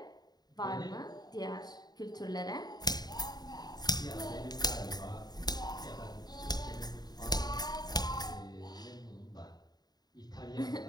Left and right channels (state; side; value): late; right; 0.20 ms